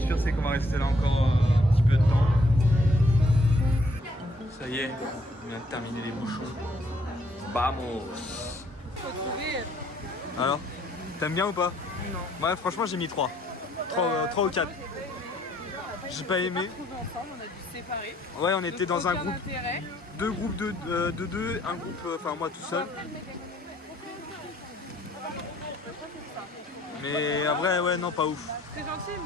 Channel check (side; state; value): both; normal; correlation 0.65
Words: sûr, c'est qu'on va rester là encore un petit peu de temps. Ça y est, on vient de terminer les bouchons. Vamos! Faut trouver. Alors, t'aimes bien ou pas? Non. Ouais, franchement, j'ai mis 3. 3 ou 4. J'ai pas aimé. On a trouvé ensemble, on a dû se séparer. Ouais, on était Donc, dans un aucun groupe, intérêt. 2 groupes de 2, un groupe, enfin moi tout seul. Mais en vrai, ouais, non, pas ouf. Très gentil,